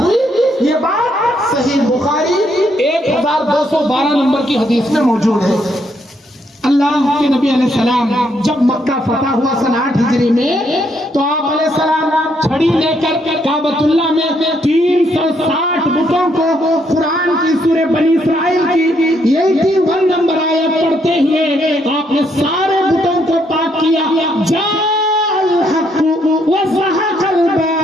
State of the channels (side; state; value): both; normal; correlation 0.73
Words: یہ بات صحیح بخاری 1212 نمبر کی حدیث میں موجود ہے۔ اللہ کے نبی علیہ السلام جب مکہ فتح ہوا سن 8 ہجری میں، تو آپ علیہ السلام چھڑی لے کر کعبۃ اللہ میں 360 بتوں کو قرآن کی سورہ بنی اسرائیل کی 81 نمبر آیت پڑھتے ہوئے آپ نے سارے بتوں کو پاک کیا۔ جاء الحق وزهق